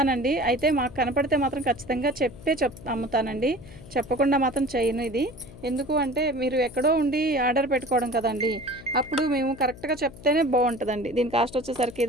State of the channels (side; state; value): left; noise; hum, 18 dB below the sound